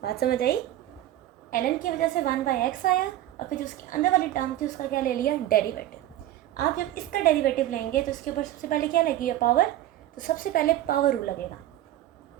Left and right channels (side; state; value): left; quieter; 13.5 dB